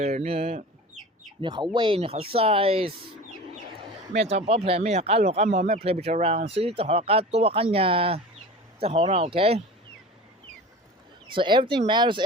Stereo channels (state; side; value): normal; both; correlation 0.35